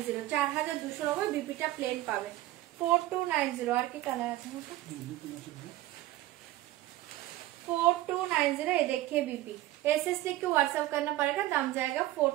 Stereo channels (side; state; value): left; quieter; 16.0 dB